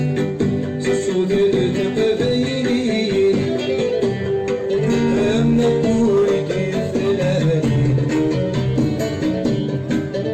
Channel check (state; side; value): identical; both; correlation 1.00